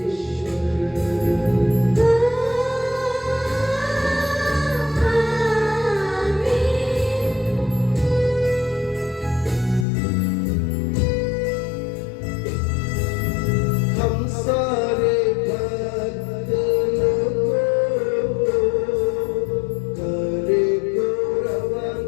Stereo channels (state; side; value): drops out; right; at 9.9 s